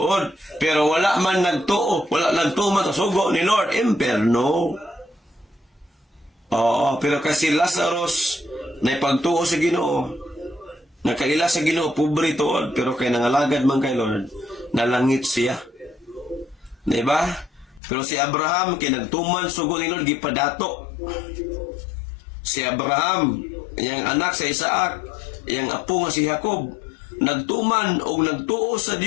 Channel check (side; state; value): right; drops out; at 17.8 s